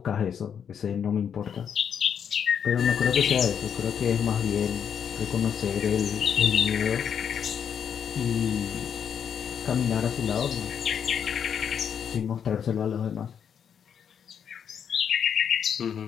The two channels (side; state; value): right; quieter; 7.9 dB